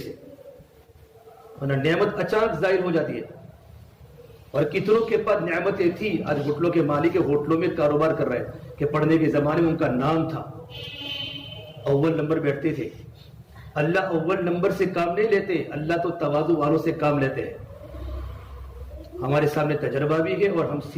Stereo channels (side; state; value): both; identical; correlation 1.00